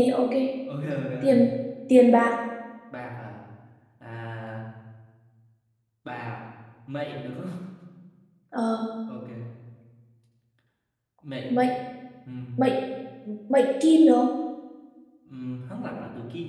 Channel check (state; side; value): identical; both; correlation 1.00